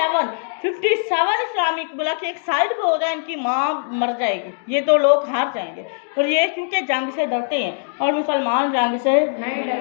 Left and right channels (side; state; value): right; silent; digital silence